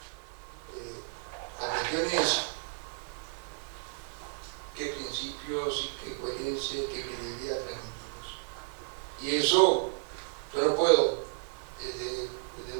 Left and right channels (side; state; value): left; silent; digital silence